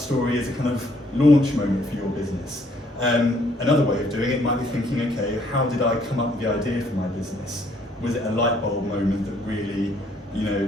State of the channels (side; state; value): both; normal; correlation 0.66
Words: as a kind of launch moment for your business. Another way of doing it might be thinking, okay, how did I come up with the idea for my business? Was it a light bulb moment that really,